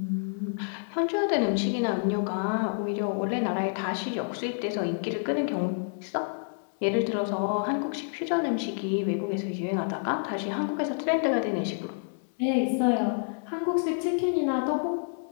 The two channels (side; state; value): right; silent; 59 dB below the other